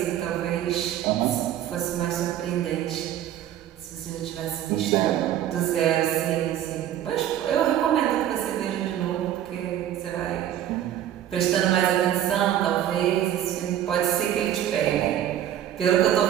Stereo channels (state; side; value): quieter; left; 11.4 dB